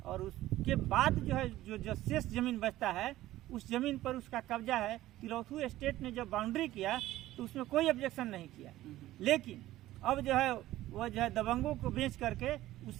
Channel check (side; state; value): left; quieter; 15.4 dB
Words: और उसके बाद जो है जो शेष जमीन बचता है उस जमीन पर उसका कब्जा है। तिलोथू एस्टेट ने जब बाउंड्री किया तो उसमें कोई ऑब्जेक्शन नहीं किया, लेकिन अब जो है वह जो है दबंगों को बेच करके